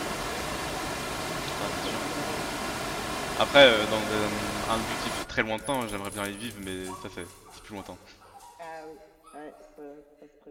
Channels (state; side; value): identical; both; correlation 1.00